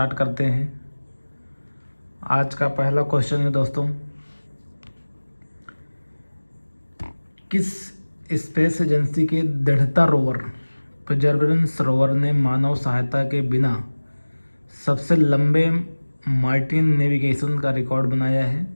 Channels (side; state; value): both; inverted; correlation -1.00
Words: करते हैं। आज का पहला क्वेश्चन है दोस्तों, किस स्पेस एजेंसी के दृढ़ता रोवर परसेवरेंस रोवर ने मानव सहायता के बिना सबसे लंबे मार्टिन नेविगेशन का रिकॉर्ड बनाया है?